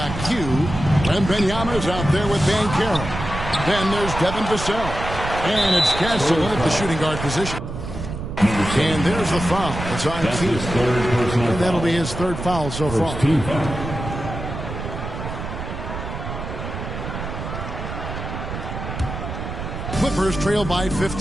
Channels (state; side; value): noise; right; rumble, 7 dB below the sound